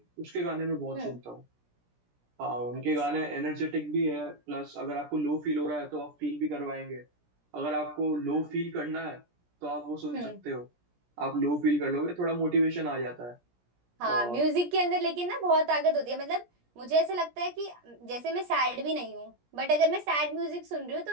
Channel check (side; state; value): left; late; 17 ms